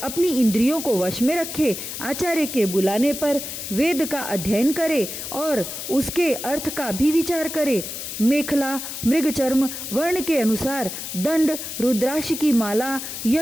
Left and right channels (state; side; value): noise; left; hiss, 7 dB below the sound